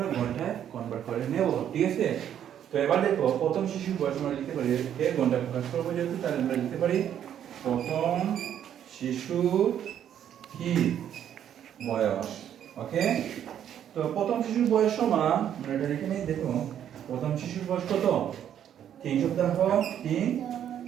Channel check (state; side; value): quieter; left; 9.9 dB